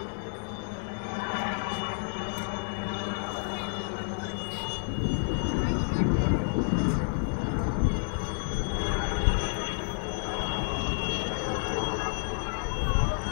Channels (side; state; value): right; silent; 58 dB below the other